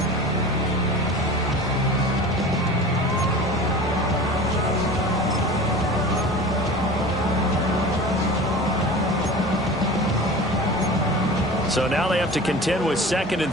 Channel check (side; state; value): both; normal; correlation 0.36